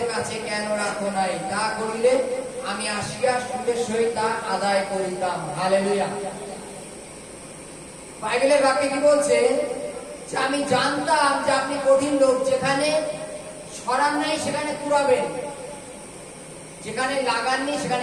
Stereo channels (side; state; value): both; identical; correlation 1.00